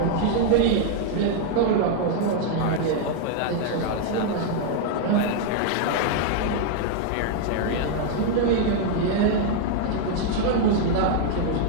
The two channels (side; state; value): both; different; correlation 0.00